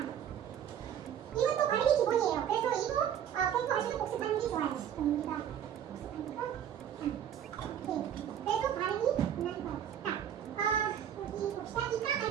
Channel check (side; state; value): left; quieter; 9.7 dB